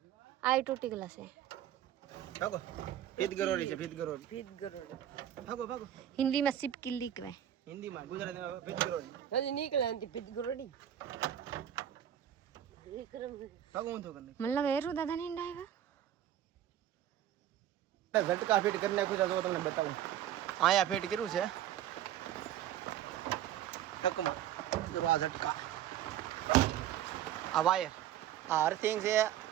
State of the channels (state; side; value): quieter; left; 11.4 dB